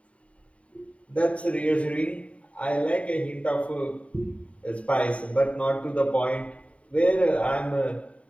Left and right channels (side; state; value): right; late; 0.065 ms